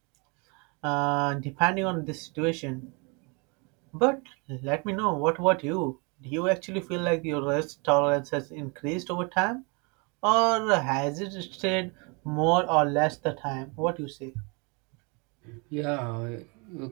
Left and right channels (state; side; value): quieter; left; 31.8 dB